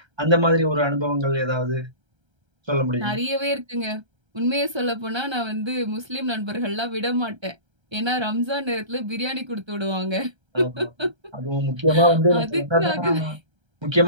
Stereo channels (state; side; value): late; left; 1.3 ms